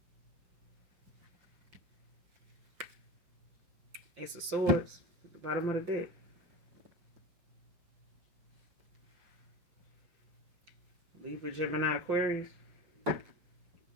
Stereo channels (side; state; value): left; late; 5.7 ms